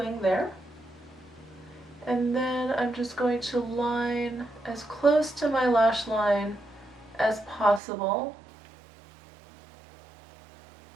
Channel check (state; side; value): drops out; left; at 7.8 s